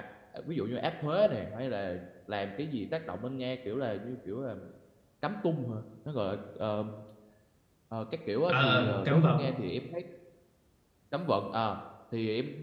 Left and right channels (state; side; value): identical; both; correlation 1.00